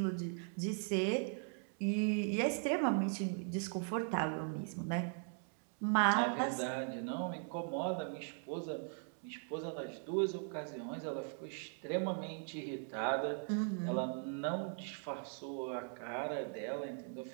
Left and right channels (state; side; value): silent; left; 51 dB below the other